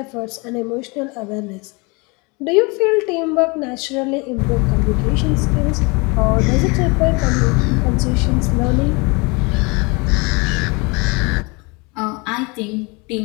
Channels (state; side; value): quieter; right; 28.5 dB